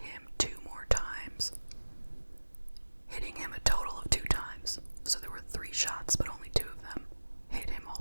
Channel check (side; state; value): both; inverted; correlation -1.00